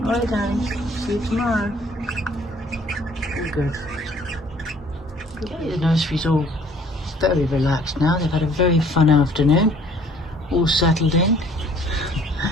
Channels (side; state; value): both; normal; correlation 0.57